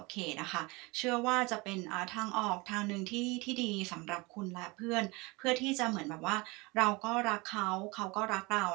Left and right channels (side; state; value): left; quieter; 25.3 dB